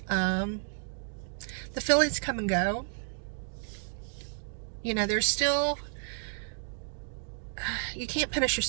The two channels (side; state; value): left; silent; digital silence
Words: The feelings come and go. There's still, you can't punish